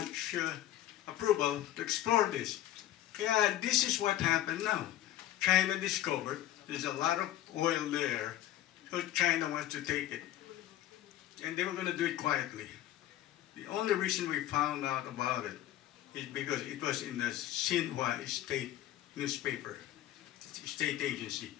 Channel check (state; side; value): quieter; right; 13.3 dB